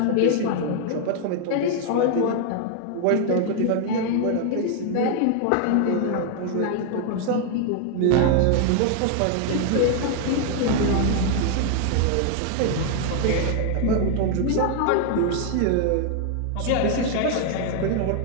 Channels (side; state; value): both; different; correlation 0.00